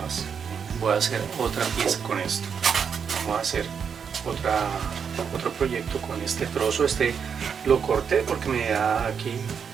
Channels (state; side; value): quieter; left; 6.8 dB